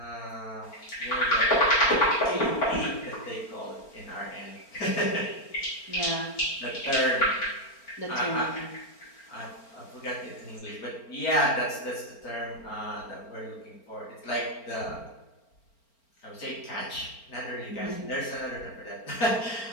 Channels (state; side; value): late; right; 4.4 ms